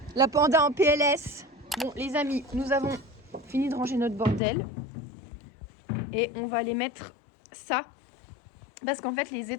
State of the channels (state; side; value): drops out; right; at 4.4 s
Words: La panda en PLS. Bon, les amis, nous avons fini de ranger notre bordel. Et on va aller mettre ça. Parce qu'en fait, les